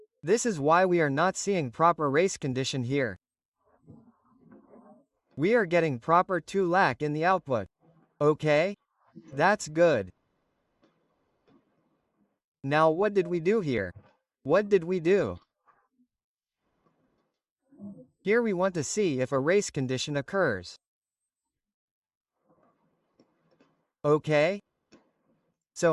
This is why we are not seeing proper race condition here. We are getting proper 2 lack in the output. Okay? That's good. Now what did we do here? What did we do? Here we want to see if a race condition occurs. Okay?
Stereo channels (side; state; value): both; identical; correlation 1.00